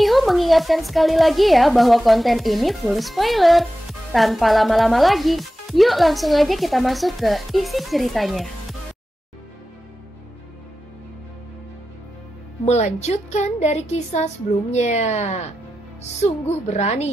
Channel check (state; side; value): normal; both; correlation 0.93